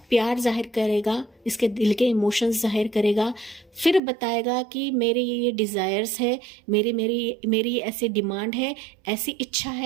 प्यार जाहिर करेगा, इसके दिल के इमोशंस जाहिर करेगा, फिर बताएगा कि मेरे ये डिज़ायर्स है, मेरी ये ऐसी डिमांड है, ऐसी इच्छा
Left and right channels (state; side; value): drops out; left; at 4.0 s